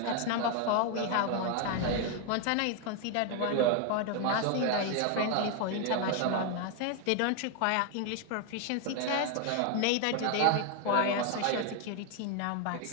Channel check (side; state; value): both; different; correlation 0.01